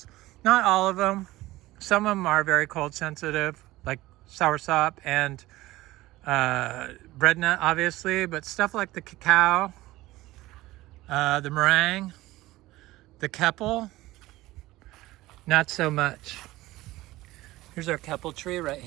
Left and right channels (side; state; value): left; quieter; 17.8 dB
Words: Not all of them. Some of them are very cold sensitive, like soursop and bread nut, obviously, but stuff like the cacao, the meringue, the keppel, not so much. Here's our keppel tree right